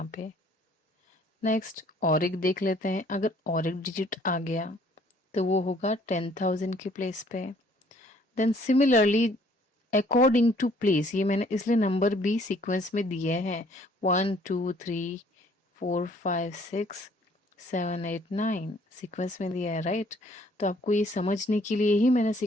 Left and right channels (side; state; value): both; normal; correlation 0.60